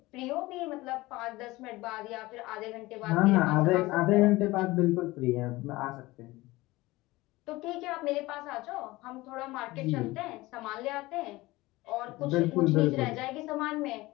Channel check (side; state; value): right; quieter; 19.9 dB